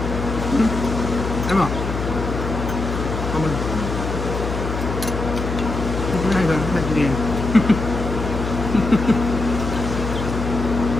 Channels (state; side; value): noise; left; hum, 4 dB below the sound